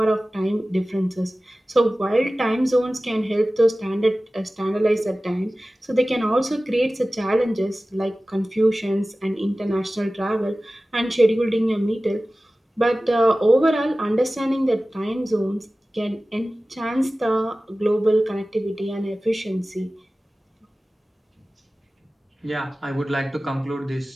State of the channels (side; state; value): both; normal; correlation 0.97